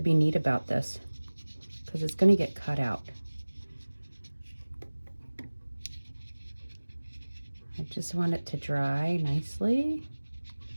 be neat about this because it's gonna get cut out. I just want it to dry nicely.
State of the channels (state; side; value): inverted; both; correlation -1.00